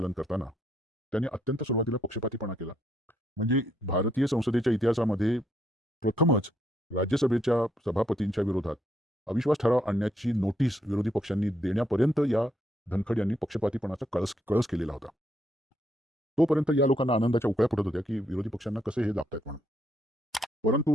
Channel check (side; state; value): both; normal; correlation 0.74